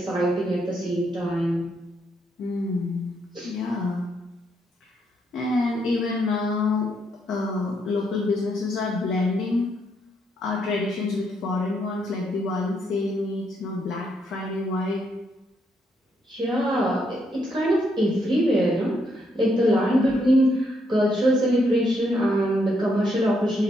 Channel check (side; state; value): both; normal; correlation 0.76